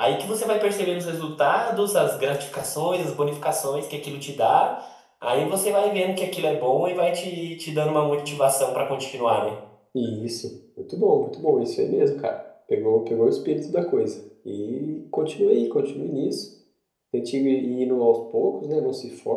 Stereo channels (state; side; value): identical; both; correlation 1.00